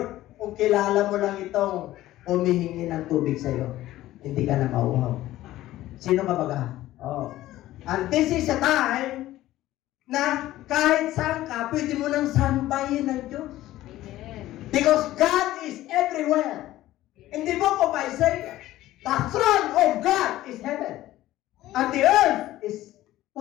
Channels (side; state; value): right; quieter; 15.2 dB